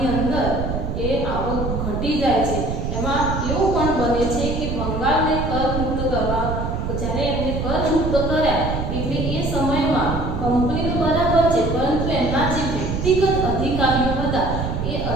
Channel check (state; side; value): noise; right; rumble, 3 dB below the sound